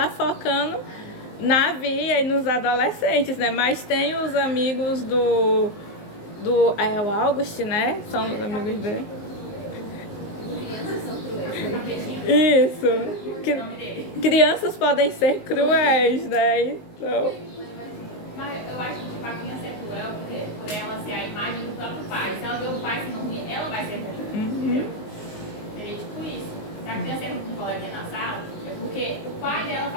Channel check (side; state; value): right; late; 19 ms